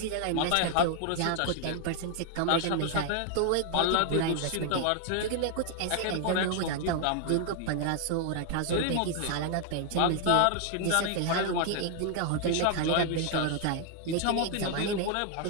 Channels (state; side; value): different; both; correlation 0.00